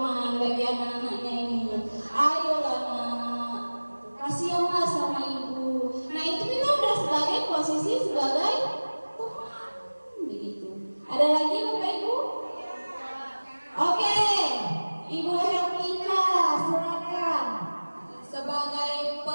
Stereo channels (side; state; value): both; inverted; correlation -1.00